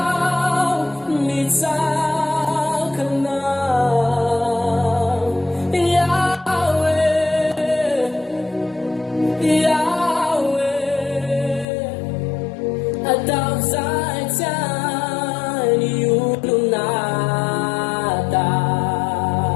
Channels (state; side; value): drops out; right; at 11.7 s